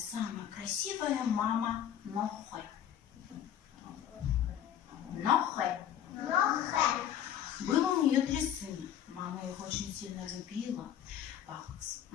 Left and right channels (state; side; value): quieter; right; 10.2 dB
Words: красивая мама Нохэ. Нохэ. Было у нее 3 сына. Мама их очень сильно любила.